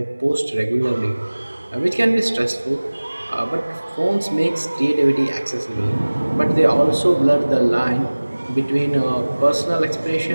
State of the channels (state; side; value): inverted; both; correlation -1.00